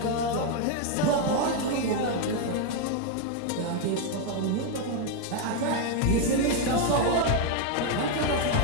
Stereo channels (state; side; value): different; both; correlation 0.01